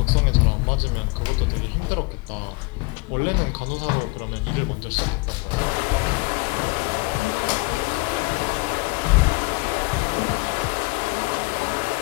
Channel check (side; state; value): right; quieter; 26.8 dB